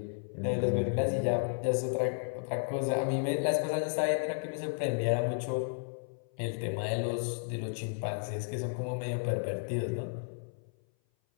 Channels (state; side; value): silent; right; 56 dB below the other